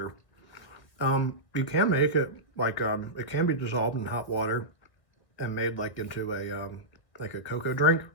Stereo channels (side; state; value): right; late; 1.7 ms